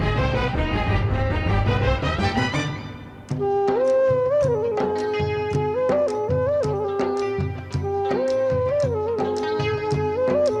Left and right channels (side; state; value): both; identical; correlation 1.00